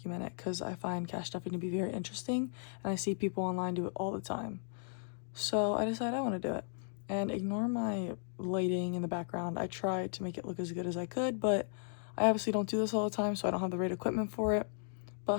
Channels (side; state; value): right; silent; digital silence